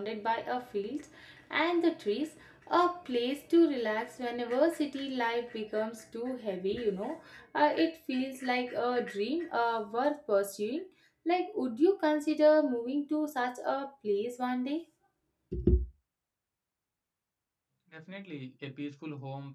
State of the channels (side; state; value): both; identical; correlation 1.00